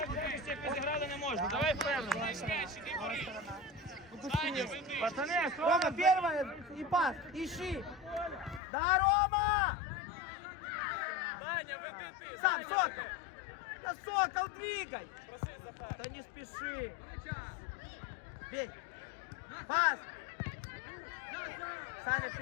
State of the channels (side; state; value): right; drops out; at 8.6 s